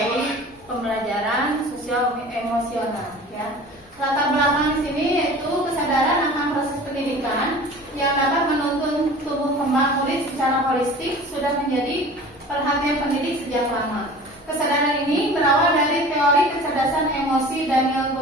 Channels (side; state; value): both; normal; correlation 0.41